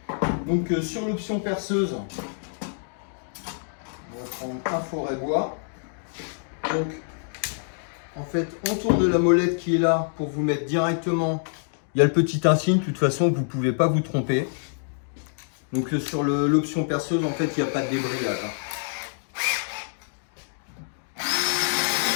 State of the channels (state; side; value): silent; right; digital silence